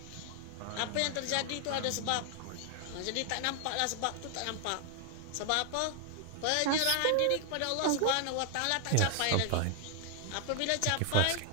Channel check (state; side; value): different; both; correlation 0.00